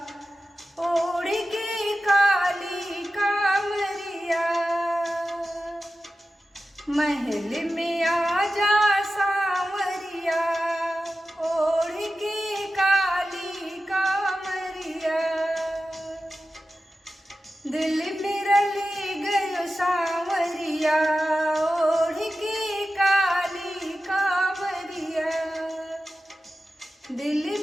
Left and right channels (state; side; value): normal; both; correlation 0.93